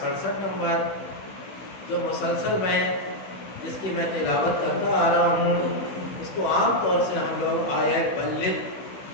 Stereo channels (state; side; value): late; right; 16 ms